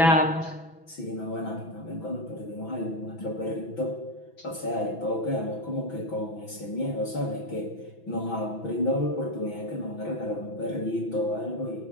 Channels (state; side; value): late; right; 6.0 ms